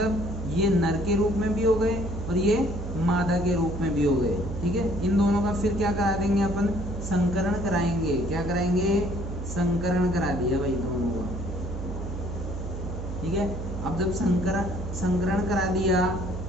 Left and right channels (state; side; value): noise; right; hum, 6 dB below the sound